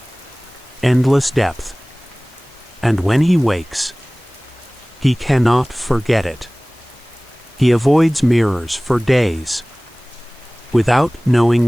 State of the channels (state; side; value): noise; left; hiss, 30 dB below the sound